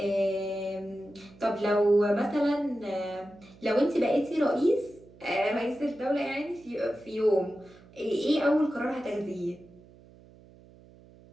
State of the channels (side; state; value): right; noise; hum, 24 dB below the sound